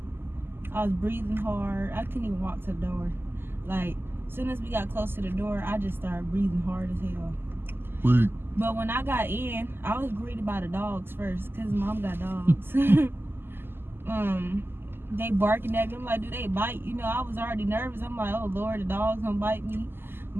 I was breathing hard. I couldn't even walk to the door. Like, as soon as we got close to the door, I just started breathing hard as hell. Wait. But when I got in, I was greeted by the dogs first, because mom got dogs. They barking at me. I'm like, do they bite? You know, I was already nervous. I'm like, oh Lord, the dog's gonna bite me.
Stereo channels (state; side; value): late; left; 0.11 ms